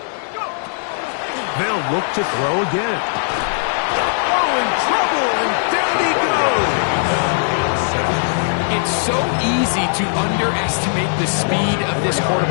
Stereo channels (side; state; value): right; silent; digital silence